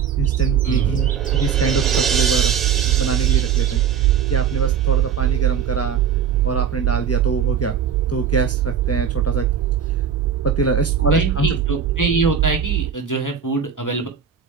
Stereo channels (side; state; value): left; quieter; 7.5 dB